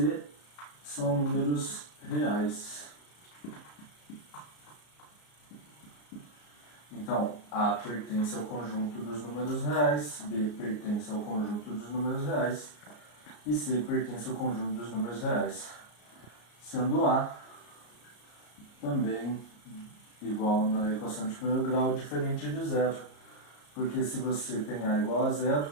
são números reais. Então, A pertence ao conjunto dos números reais, B pertence ao conjunto dos números reais e C pertence ao conjunto dos números reais. Sendo A também igual na equação de primeiro grau, diferente de zero. Porque se você tem A igual a zero,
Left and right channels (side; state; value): right; late; 34 ms